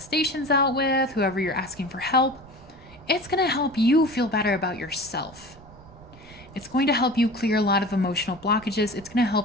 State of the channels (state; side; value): noise; right; rumble, 22 dB below the sound